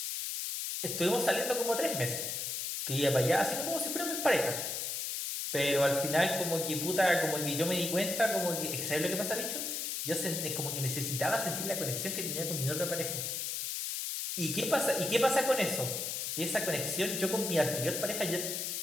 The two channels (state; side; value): noise; left; hiss, 3 dB below the sound